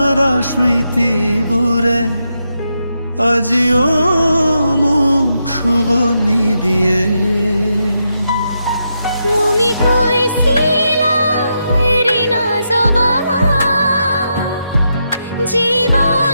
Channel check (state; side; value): inverted; both; correlation -0.84